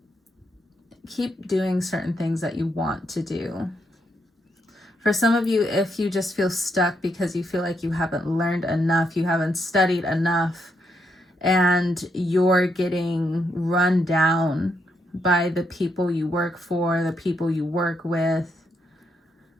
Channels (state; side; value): normal; both; correlation 0.78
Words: Keep doing certain things that you want to do. For some of you, if you just feel stuck because you feel like you haven't learned enough, you haven't studied enough, and you're getting run down by the people you work for, the people you work with.